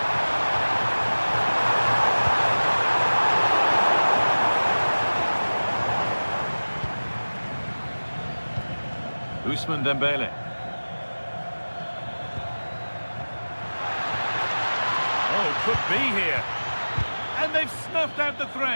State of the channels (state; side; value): inverted; both; correlation -1.00